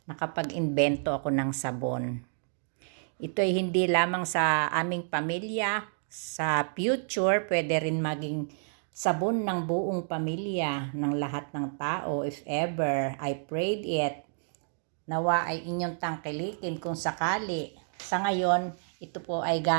nakapag-imbento ako ng sabon. Ito ay hindi lamang sa aming pamilya, sa future pwede rin maging sabon ng buong pamilya, ng lahat ng tao if ever. I prayed it. Nawa ay inyong tangkilikin kung sakali. Sa ngayon, ito po ay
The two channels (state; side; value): silent; left; digital silence